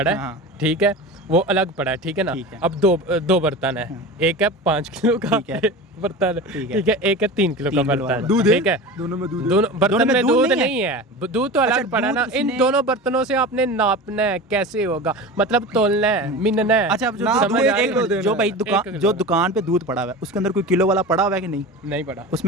है, हाँ। ठीक है, वो अलग पड़ा है, ठीक है ना। ठीक है। अब दो बर्तन है, एक है 5 किलो का, ठीक है। बर्तन ठीक है, एक है 3 किलो का 3 किलो बर्तन, दूध है? ठीक है। दोनों में दूध दोनों बर्तन में दूध नहीं नहीं है, दूध तो अलग पड़ा ना। दूध इन उसने- दोनों बर्तनों से आपने नापना है, कैसे होगा, मतलब तोलना है, मिनना है। अच्छा, अब जो समझ दूध आ रही है? जो भाई एक दुकान किलो जो का। दुकान पे दूध पड़ा हुआ है उसके अंदर कोई किलो वाला पड़ा हुआ है कि नहीं? नहीं पड़ा,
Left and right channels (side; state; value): both; normal; correlation 0.31